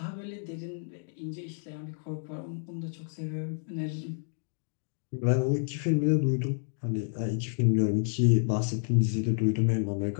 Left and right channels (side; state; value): right; silent; 58 dB below the other